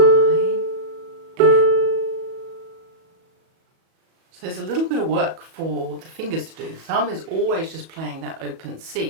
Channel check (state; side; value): late; left; 37 ms